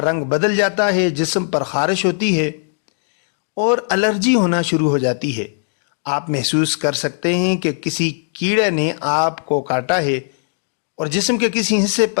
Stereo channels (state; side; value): silent; right; digital silence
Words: رنگ بدل جاتا ہے، جسم پر خارش ہوتی ہے اور الرجی ہونا شروع ہو جاتی ہے۔ آپ محسوس کر سکتے ہیں کہ کسی کیڑے نے آپ کو کاٹا ہے اور جسم کے کسی حصے